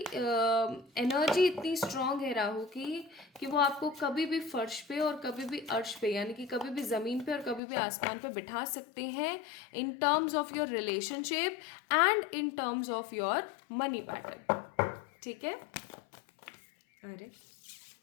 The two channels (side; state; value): right; drops out; at 7.6 s